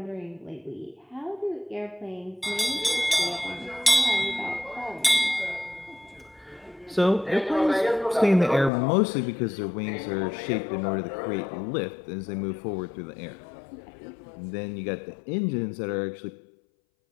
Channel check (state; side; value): drops out; right; at 8.7 s